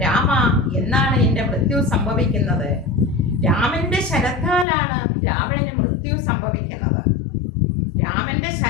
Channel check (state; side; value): drops out; right; at 4.7 s